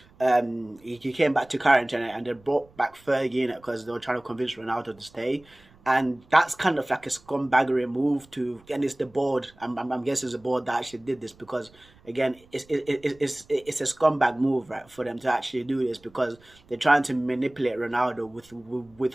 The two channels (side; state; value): right; noise; rumble, 28 dB below the sound